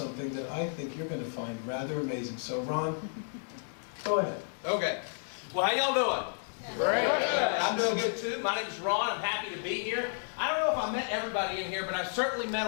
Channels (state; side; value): silent; right; digital silence